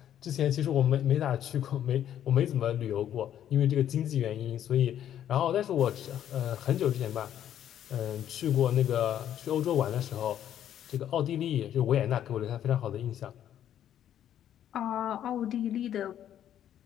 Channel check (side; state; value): right; quieter; 10.6 dB